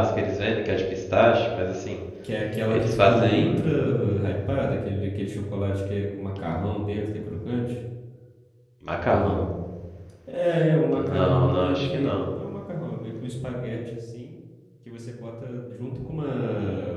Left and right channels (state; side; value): identical; both; correlation 1.00